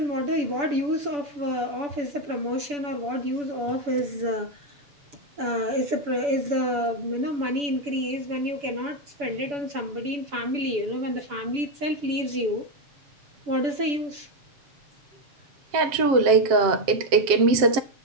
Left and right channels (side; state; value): left; late; 6.9 ms